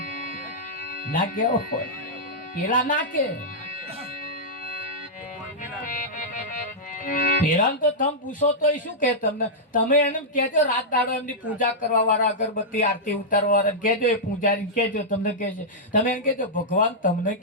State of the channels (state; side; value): normal; both; correlation -0.09